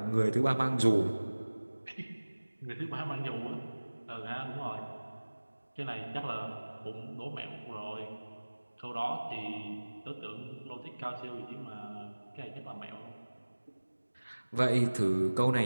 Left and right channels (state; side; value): inverted; both; correlation -1.00